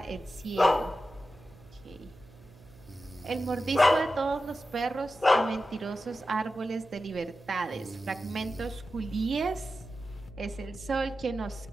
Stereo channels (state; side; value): noise; right; hum, 23 dB below the sound